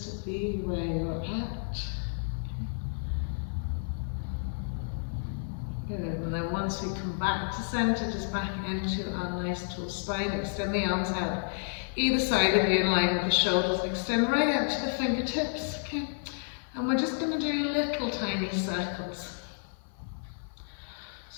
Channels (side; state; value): right; silent; 57 dB below the other